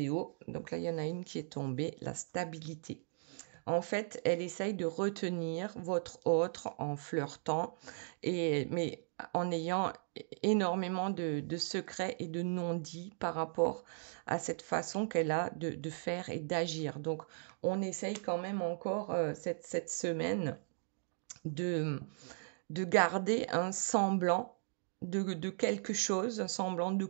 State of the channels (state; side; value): silent; left; digital silence